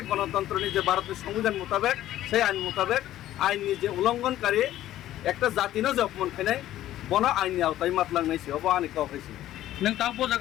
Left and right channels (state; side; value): quieter; right; 13.5 dB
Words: গণতন্ত্র নি যে ভারতের সংবিধান মোতাবেক সেই আইন মোতাবেক আইনি যে উল্লঙ্ঘনকারী একটা জাতি না যে অপমান খাই বন আইনি আওতায় মাতলাংনাইছে অব আনি কাউ খাইছে নং তাও